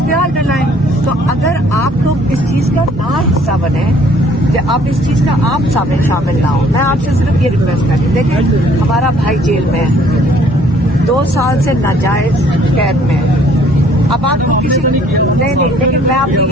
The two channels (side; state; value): both; normal; correlation 0.59